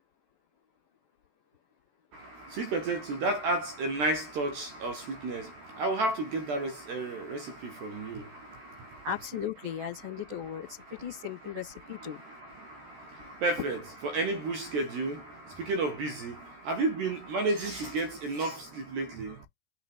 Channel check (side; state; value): left; late; 14 ms